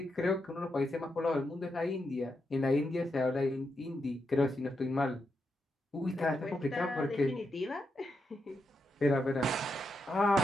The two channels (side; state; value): both; normal; correlation 0.84